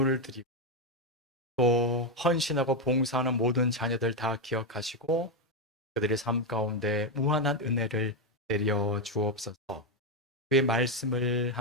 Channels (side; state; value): both; normal; correlation 0.06